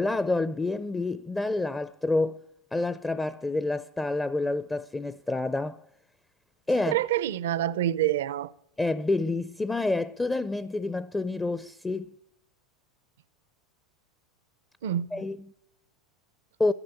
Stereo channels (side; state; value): both; normal; correlation 0.65